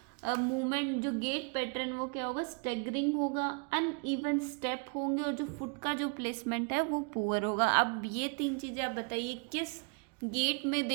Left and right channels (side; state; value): left; quieter; 37.5 dB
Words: मूवमेंट जो गेट पैटर्न वो क्या होगा, स्टैगरिंग होगा, अनइवन स्टेप होंगे, और जो फुट का जो प्लेसमेंट है वो पुअर होगा। अब ये तीन चीज़ें आप बताइए किस गेट में